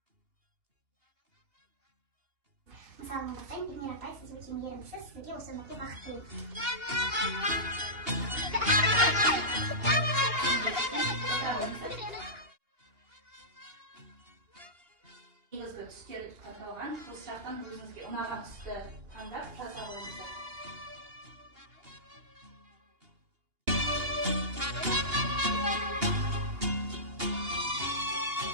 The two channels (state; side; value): late; left; 2.8 ms